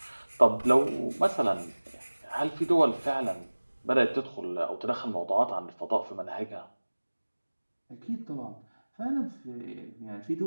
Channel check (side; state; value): both; inverted; correlation -1.00